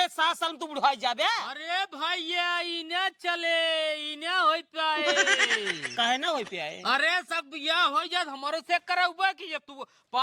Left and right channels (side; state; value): both; identical; correlation 1.00